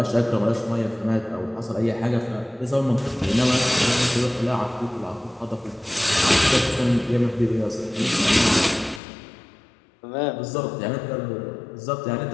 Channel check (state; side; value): drops out; right; at 9.0 s